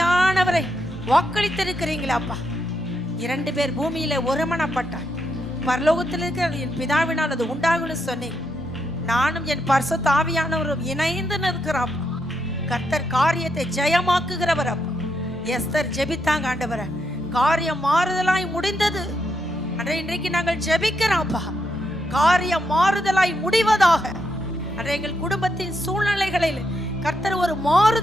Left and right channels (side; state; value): both; normal; correlation 0.80